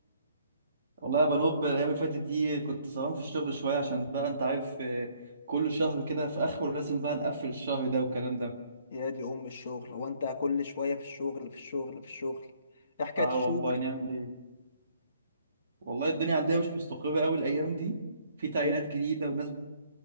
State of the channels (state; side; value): inverted; both; correlation -0.64